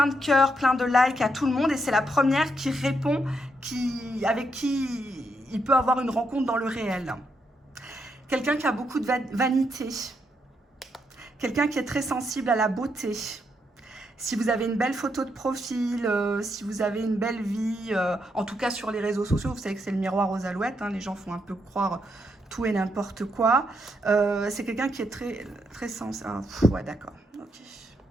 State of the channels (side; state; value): both; normal; correlation 0.79